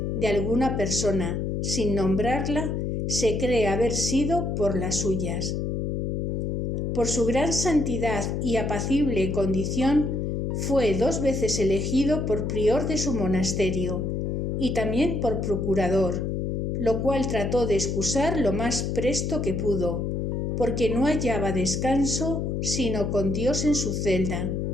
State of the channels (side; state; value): left; noise; hum, 1 dB below the sound